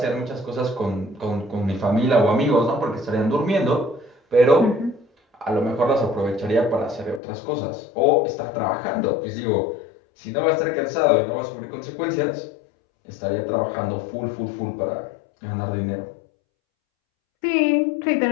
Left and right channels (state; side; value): drops out; right; at 7.2 s